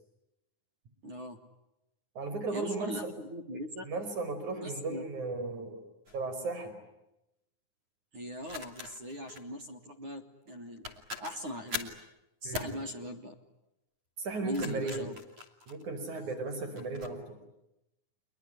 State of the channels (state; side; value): late; left; 9.6 ms